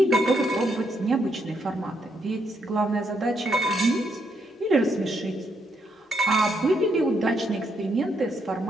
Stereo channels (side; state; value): both; normal; correlation 0.76